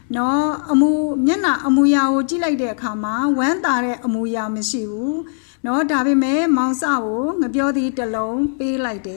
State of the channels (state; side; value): silent; right; digital silence